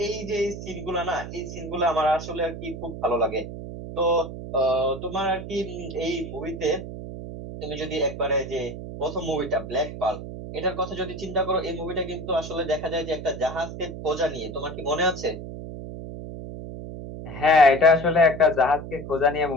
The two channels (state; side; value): noise; right; hum, 9 dB below the sound